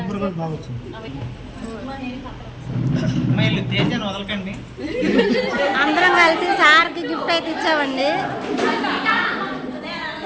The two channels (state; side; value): identical; both; correlation 1.00